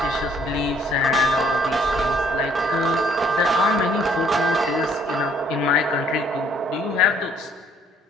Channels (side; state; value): both; normal; correlation 0.63